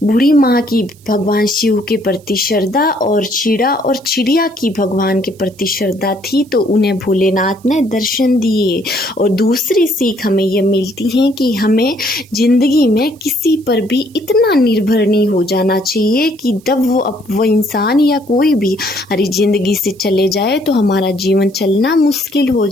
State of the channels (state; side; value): noise; right; hiss, 28 dB below the sound